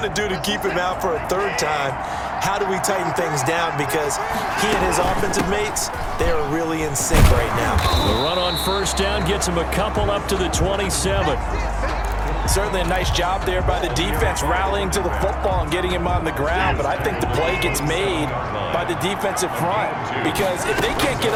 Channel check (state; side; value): identical; both; correlation 1.00